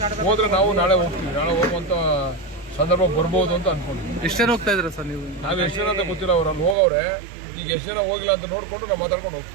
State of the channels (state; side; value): drops out; left; at 6.8 s